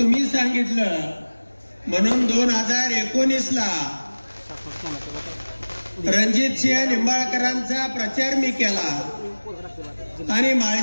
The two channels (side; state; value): both; inverted; correlation -1.00